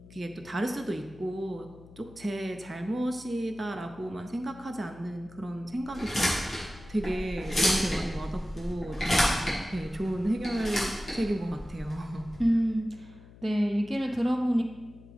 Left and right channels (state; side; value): noise; left; hum, 20 dB below the sound